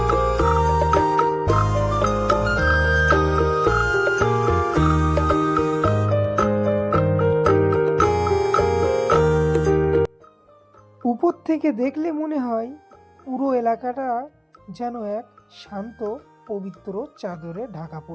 উপর থেকে দেখলে মনে হয় পুরো এলাকাটা যেন এক শান্ত পবিত্র চাদরে ঢাকা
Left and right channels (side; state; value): both; identical; correlation 1.00